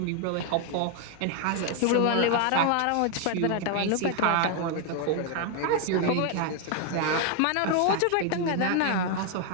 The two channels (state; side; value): different; both; correlation 0.01